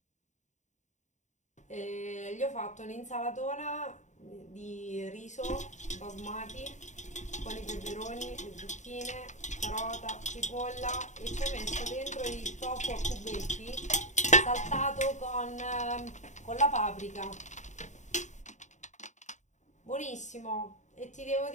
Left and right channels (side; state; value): right; late; 0.35 ms